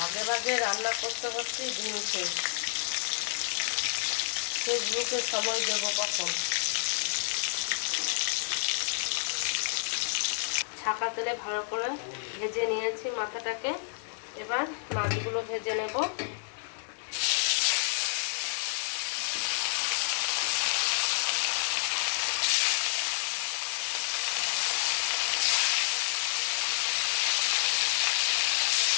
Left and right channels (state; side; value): silent; right; digital silence